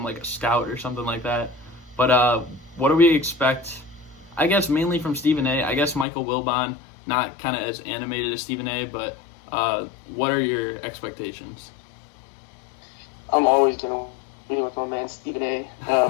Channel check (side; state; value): right; drops out; at 6.1 s